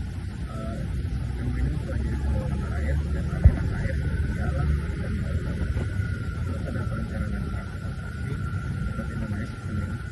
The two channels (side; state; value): both; identical; correlation 1.00